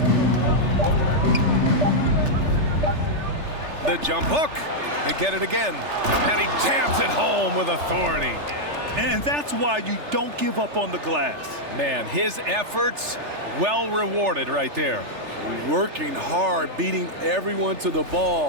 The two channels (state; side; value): late; left; 3.4 ms